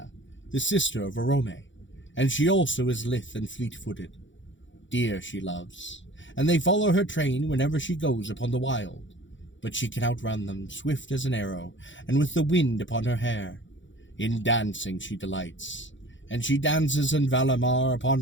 the sister of Arome, and she also is lithe and fleet-footed. Deer she loves, and they follow her train whenever she goes upon the wild, but she can outrun them, swift as an arrow, and with the wind upon her hair. In dancing she delights, and she dances in Valimar upon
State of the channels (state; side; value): late; right; 0.55 ms